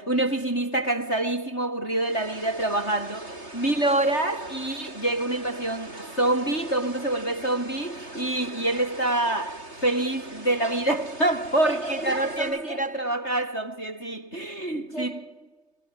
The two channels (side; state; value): right; late; 3.3 ms